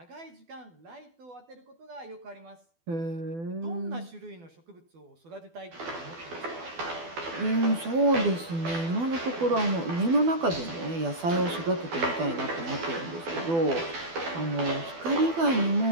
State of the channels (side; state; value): left; late; 12 ms